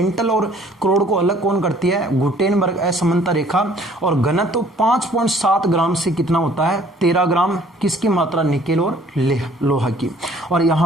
और करोड़ को अलग कौन करती है? गुटेनबर्ग असमानता रेखा। और घनत्व 5.7 ग्राम से कितना होता है? 13 ग्राम। किसकी मात्रा? निकेल और लोहा की। और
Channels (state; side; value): normal; both; correlation 0.57